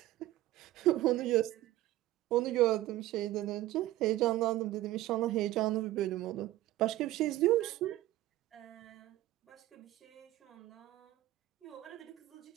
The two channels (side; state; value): left; quieter; 15.6 dB